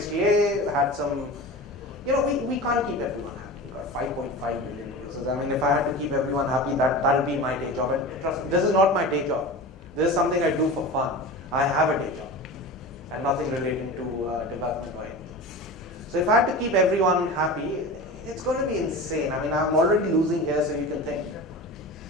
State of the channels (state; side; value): normal; both; correlation 0.31